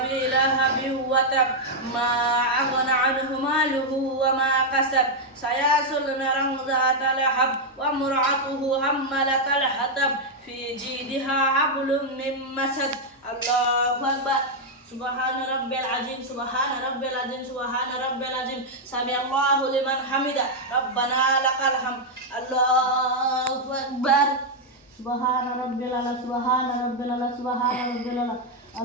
لهب وتب ما أغنى عنه ماله وما كسب سيصلى نارا ذات لهب وامرأته حمالة الحطب في جيدها حبل من مسد. الله أكبر. سبحان ربي العظيم سبحان ربي العظيم سبحان ربي العظيم سمع الله لمن حمده ربنا لك الحمد. الله أكبر. سبحان ربي الأعلى سبحان ربي الأعلى سبحان ربي الأعلى.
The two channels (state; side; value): normal; both; correlation -0.01